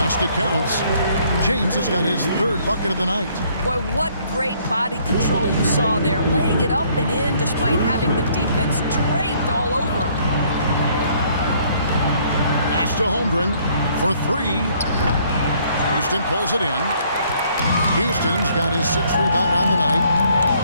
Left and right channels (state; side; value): inverted; both; correlation -0.63